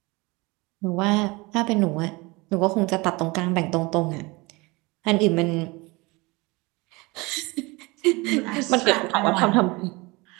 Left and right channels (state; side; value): quieter; left; 24.6 dB